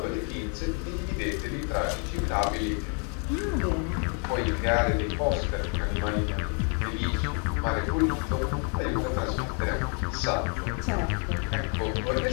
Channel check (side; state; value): right; quieter; 39.4 dB